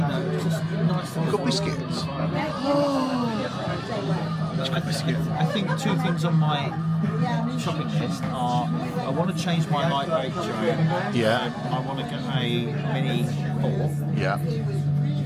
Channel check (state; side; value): noise; left; rumble, 28 dB below the sound